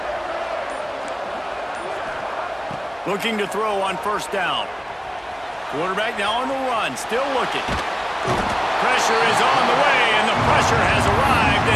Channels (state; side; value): identical; both; correlation 1.00